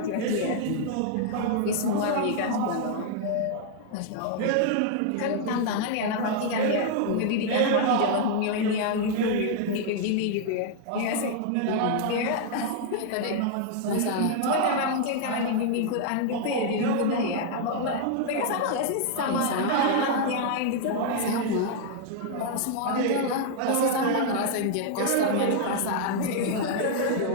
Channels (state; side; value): different; both; correlation -0.01